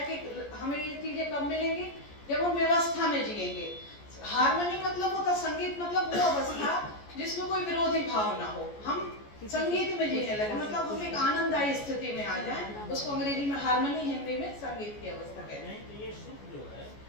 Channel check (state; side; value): late; right; 14 ms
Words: कि हमें ये चीजें कब मिलेंगी? जब हम व्यवस्था में जिएंगे। हार्मनी मतलब होता, संगीत मतलब वो अवस्था जिसमें कोई विरोधी भाव ना हो। हम संगीत में जीने लगे, मतलब हम एक आनंददायी स्थिति में आ जाएं। उसको अंग्रेजी में हार्मनी, हिंदी में संगीत की अवस्था कहते हैं। तो ये सुख जो है